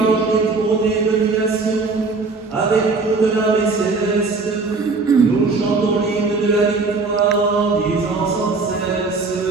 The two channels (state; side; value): quieter; left; 4.0 dB